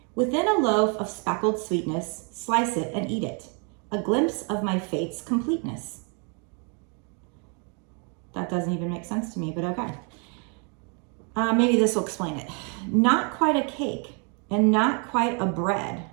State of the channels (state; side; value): quieter; left; 37.7 dB